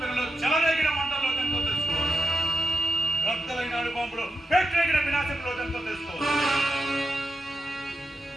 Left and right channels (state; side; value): normal; both; correlation 0.87